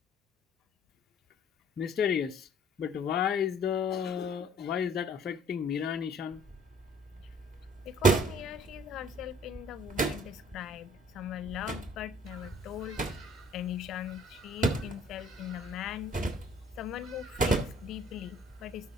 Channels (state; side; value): normal; both; correlation 0.56